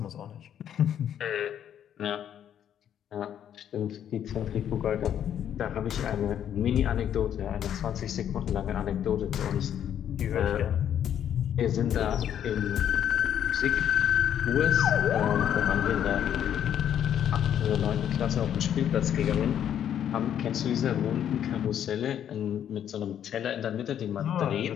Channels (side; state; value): right; quieter; 9.8 dB